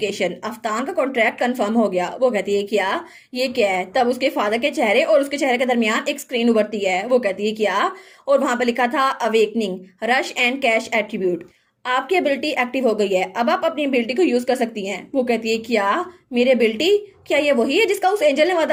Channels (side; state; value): both; identical; correlation 1.00